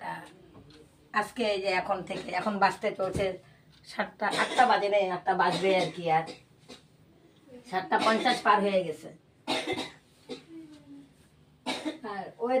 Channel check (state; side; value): identical; both; correlation 1.00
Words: তা আজকে এই যে এখন বাজতে চলছে 7টা, 8টা বাজে নেই, 8টা বাজবে আর কি। আর 7:50 পার হয়ে গেছে। আর